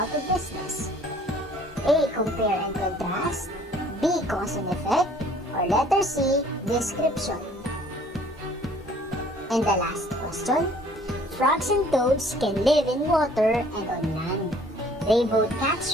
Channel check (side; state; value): both; normal; correlation 0.56